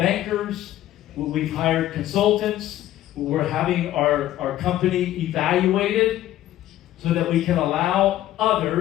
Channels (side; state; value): right; quieter; 13.7 dB